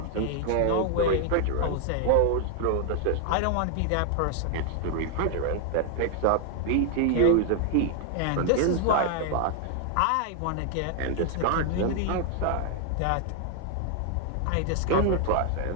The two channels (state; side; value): different; both; correlation 0.00